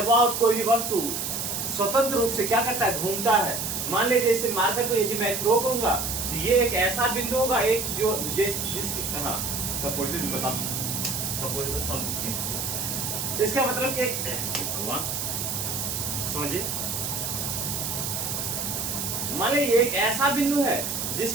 कोई भी वस्तु स्वतंत्र रूप से क्या करता है, घूमता है। मान लीजिए इसे मारकर को यदि मैं थ्रो करूंगा तो ये एक ऐसा बिंदु होगा, एक जो जिसके हाँ सपोज बता इसका मतलब कि भगवान समझिए, मान लीजिए एक ऐसा बिंदु है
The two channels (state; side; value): noise; right; hiss, 2 dB below the sound